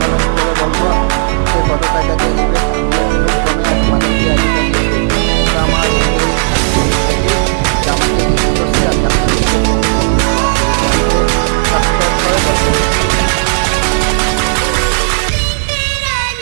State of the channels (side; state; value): left; silent; digital silence